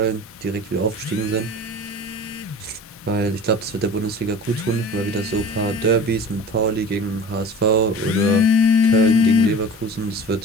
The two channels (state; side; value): normal; both; correlation 0.39